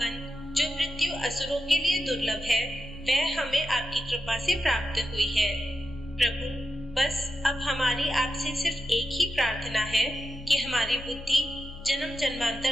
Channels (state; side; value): normal; both; correlation 0.88